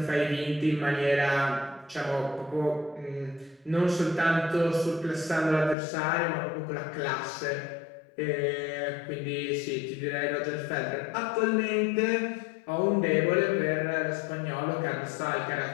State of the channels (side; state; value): right; drops out; at 5.8 s